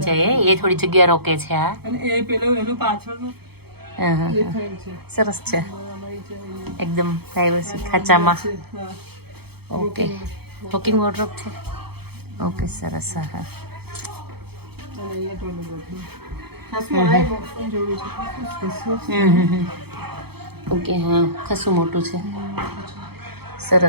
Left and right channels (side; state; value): left; late; 0.96 ms